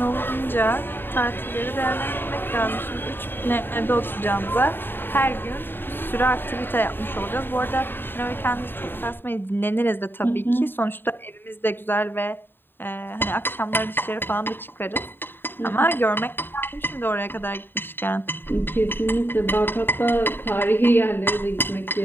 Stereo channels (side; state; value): right; late; 0.098 ms